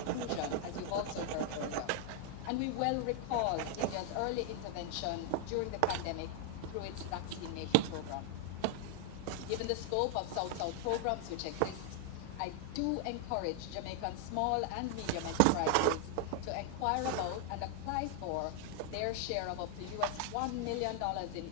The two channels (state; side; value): different; both; correlation 0.00